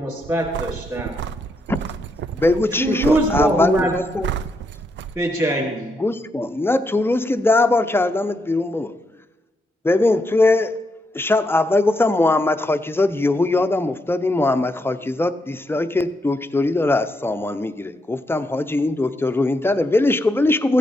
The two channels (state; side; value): normal; both; correlation 0.80